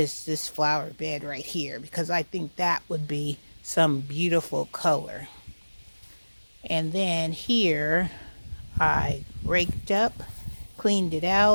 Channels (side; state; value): both; inverted; correlation -1.00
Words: flower bed right here, because I think that would be some beautiful color. And then here I raked up, cleaned it